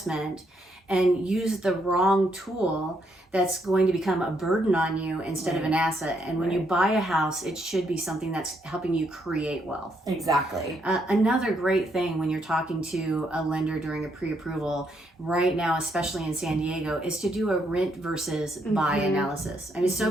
and use the wrong tool that's going to become a burden on you instead of an asset. And when you buy a house, it should be something that's helping you create wealth. Exactly. Another great thing when you're talking to a lender during a pre-approval right now, especially in San Diego, is to do a rent versus buy analysis. I mean,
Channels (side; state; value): both; normal; correlation 0.75